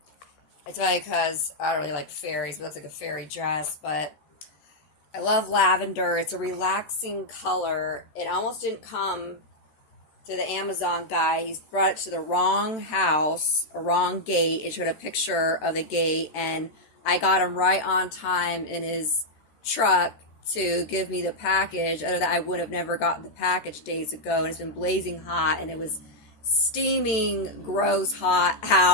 It's funny because I don't really like fairies, but it looks like a fairy dress. But I love lavender. It's a relaxing color. It almost didn't come to the Amazon guy. He's brought it to the wrong house, a wrong gate. It showed a picture of the gate, and I got him right on time in his truck to give me the package. Other than that, I would have never gotten the package days ago. And it's been blazing hot, and it was steaming, gross hot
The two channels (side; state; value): right; late; 13 ms